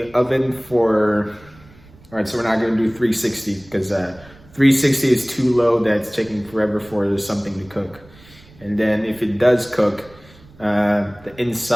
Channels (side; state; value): right; noise; rumble, 24 dB below the sound